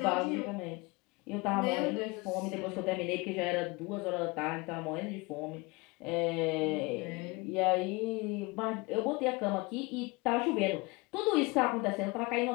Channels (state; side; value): quieter; right; 25.4 dB